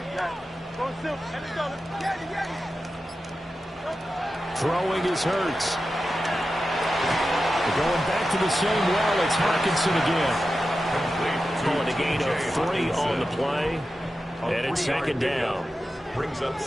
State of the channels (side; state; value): both; normal; correlation 0.92